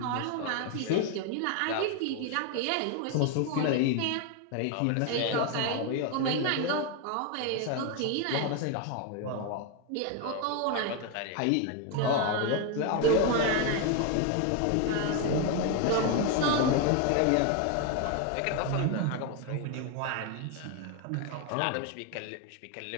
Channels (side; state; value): both; different; correlation 0.01